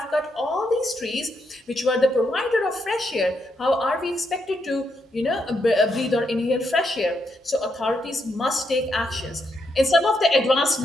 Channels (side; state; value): both; normal; correlation 0.79